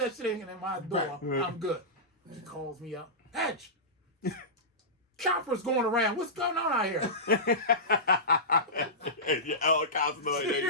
shit ain't in my door, Right. I'm good. She calls me up. Hedge. Chopper's going around. What's going on out here? Your helicopter noise.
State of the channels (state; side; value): normal; both; correlation -0.16